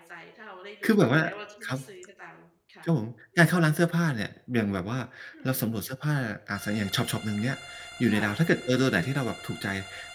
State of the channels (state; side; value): identical; both; correlation 1.00